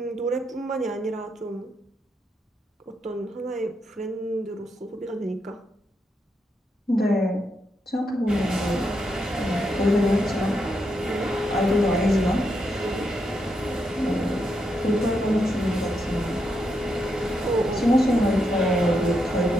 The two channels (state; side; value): normal; both; correlation 0.81